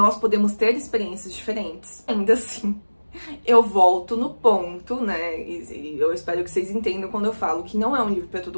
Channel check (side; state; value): both; inverted; correlation -1.00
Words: podemos ter experiências diferentes. Ainda assim, eu volto no ponto, né, e eu espero que vocês entendam quando eu falo que não é um livro para